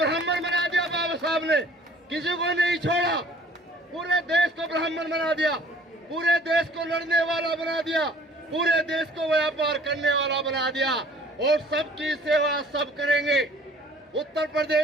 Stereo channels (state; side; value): normal; both; correlation 0.52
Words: बना दिया बाबा साहब ने, किसी को नहीं छोड़ा, पूरे देश को ब्राह्मण बना दिया, पूरे देश को लड़ने वाला बना दिया, पूरे देश को व्यापार करने वाला बना दिया, और सबकी सेवा सब करेंगे। उत्तर